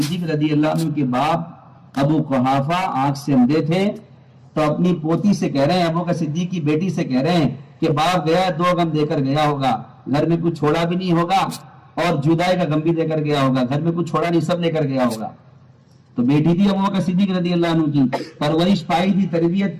رضی اللہ عنہ کے باپ ابو قحافہ آنکھ سے اندھے تھے، تو اپنی پوتی سے کہہ رہے ہیں، ابو بکر صدیق کی بیٹی سے کہہ رہے ہیں کہ باپ گیا 2 غم دے کر گیا ہوگا، گھر میں کچھ چھوڑا بھی نہیں ہوگا اور جدائی کا غم بھی دے کر گیا ہوگا، گھر میں کچھ چھوڑا نہیں، سب لے کر گیا ہوگا. تو بیٹی تھی ابو بکر صدیق رضی اللہ عنہ کی، پرورش پائی تھی، تربیت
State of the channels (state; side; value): identical; both; correlation 1.00